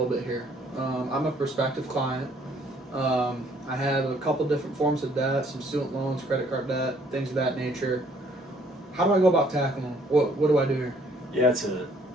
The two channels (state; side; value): normal; both; correlation 0.62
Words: bit here. I'm a prospective client. I have a couple different forms of debt, some student loans, credit card debt, things of that nature. How do I go about tackling them? What do I do here? Yeah,